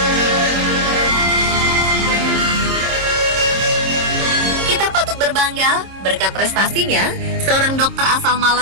Berbangga, berkat prestasinya, seorang dokter asal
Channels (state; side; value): late; left; 26 ms